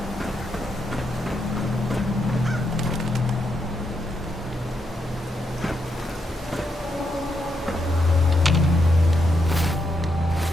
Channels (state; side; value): normal; both; correlation 0.81